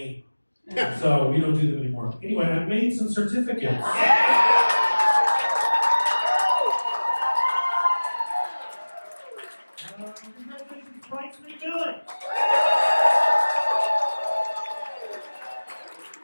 So we don't do them anymore. Anyway, I made some certificates. Congratulations, Bryce McMillan.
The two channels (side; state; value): both; inverted; correlation -1.00